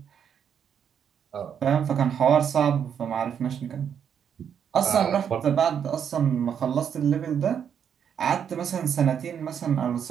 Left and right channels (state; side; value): quieter; left; 8.1 dB